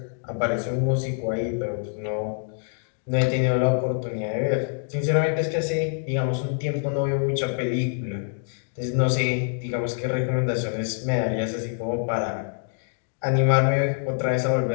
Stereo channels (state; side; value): silent; right; 61 dB below the other